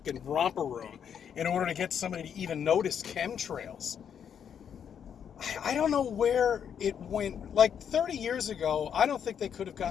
romper room in order to get somebody to even notice chemtrails. I don't know where it went. Like 30 years ago, I don't think they could have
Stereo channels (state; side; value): quieter; right; 8.1 dB